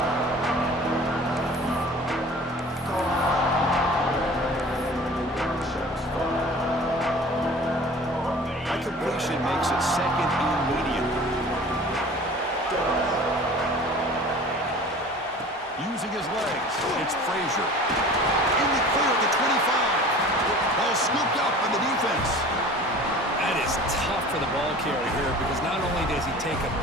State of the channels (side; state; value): both; normal; correlation 0.43